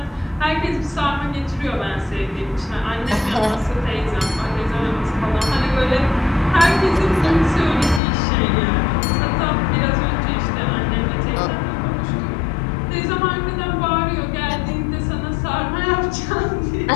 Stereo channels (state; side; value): drops out; right; at 8.0 s